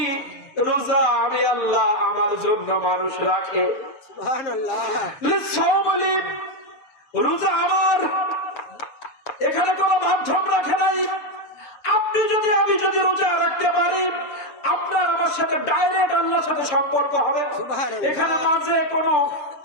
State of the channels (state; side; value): late; right; 7.2 ms